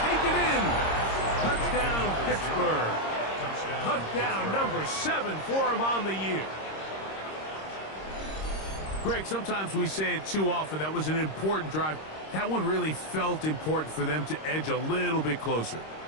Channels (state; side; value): late; right; 26 ms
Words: take it in. Touchdown, Pittsburgh. Touchdown number 7 for him on the year. Greg, sometimes we say it too often. That was an important drive. That one really felt important for them to edge a little bit closer.